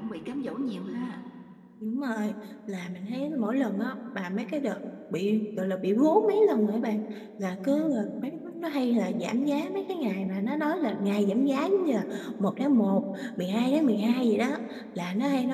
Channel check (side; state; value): both; identical; correlation 1.00